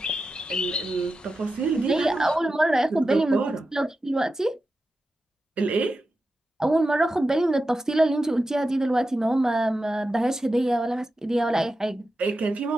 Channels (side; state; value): both; normal; correlation 0.91